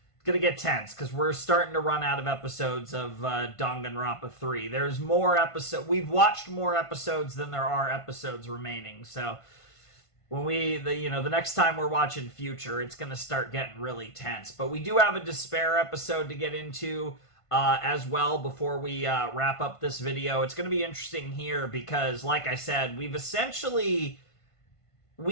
gonna get tense, because we're starting to run out of episodes of Danganronpa 3. There's more episodes. We've watched more episodes than there are episodes remaining. So when the next time we're watching Future, it's gonna start getting really tense. But we do have a Despair episode to get into as well before we wrap up this video. It's gonna be interesting here because, like I said, we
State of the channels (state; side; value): late; right; 1.5 ms